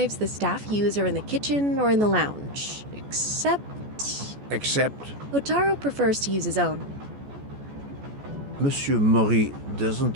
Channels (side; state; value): left; late; 14 ms